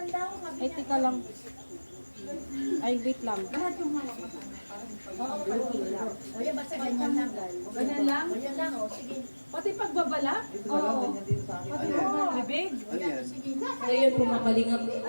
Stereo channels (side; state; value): both; inverted; correlation -1.00